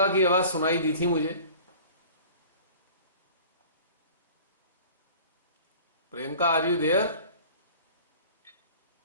की आवाज सुनाई दी थी मुझे। Priyanka, are you there?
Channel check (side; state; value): both; inverted; correlation -0.44